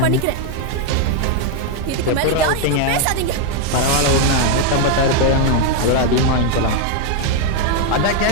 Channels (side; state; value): both; different; correlation 0.01